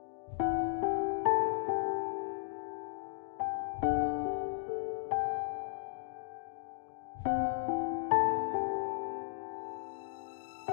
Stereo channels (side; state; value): right; silent; digital silence